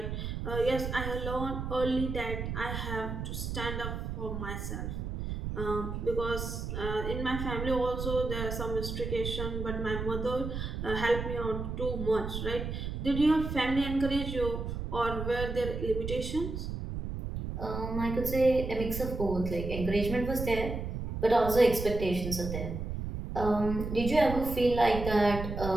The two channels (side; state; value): right; noise; rumble, 5 dB below the sound